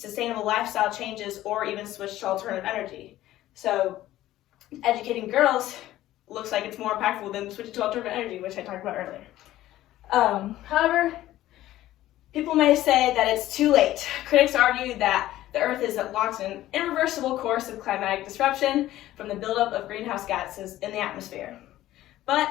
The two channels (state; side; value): quieter; right; 14.6 dB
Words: lifestyle changes or even switch to alternative energy. So educating girls looks like it's more impactful than switching to alternative energy, which I talked about earlier. However, people may say that it's too late. Critics argue that the Earth is locked in an irreversible course of climatic disruption from the buildup of greenhouse gases in the atmosphere. But